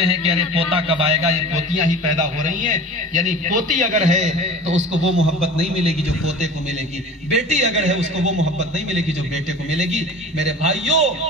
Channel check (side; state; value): both; normal; correlation 0.38